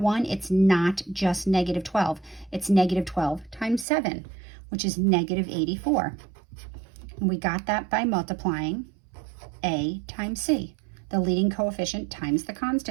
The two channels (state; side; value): drops out; left; at 3.9 s